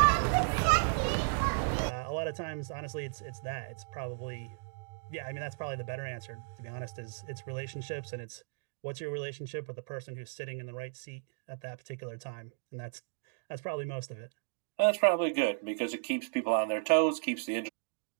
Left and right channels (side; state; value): left; silent; digital silence